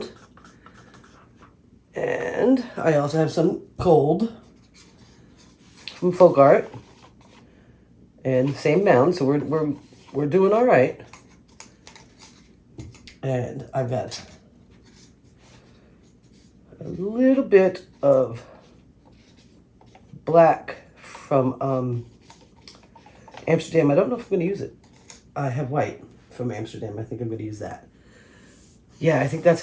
And I also have some gold from Folk Art. And same mound, so we're doing all right. And I've got a little bit of black from Amsterdam. I don't know if I'm going to use it. I have white from Amsterdam. I think I'm going to use that. Yeah, I think that's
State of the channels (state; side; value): identical; both; correlation 1.00